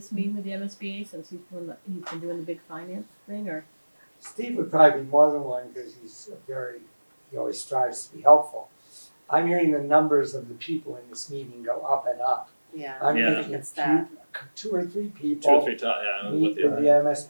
meeting with the MSBA, since he's been doing the big finance thing, or, Steve would probably be more than one, because he always strives to be helpful. I'm hearing the numbers of the people in this meeting go up and up. Yeah, I'm Yeah. I think thinking it's that. two or three Two or people three times, yeah, meet with with the, the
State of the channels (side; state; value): both; inverted; correlation -1.00